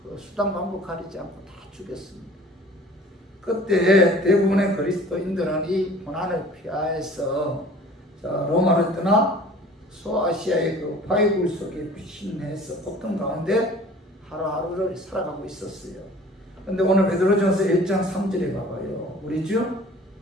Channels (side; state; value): both; normal; correlation 0.48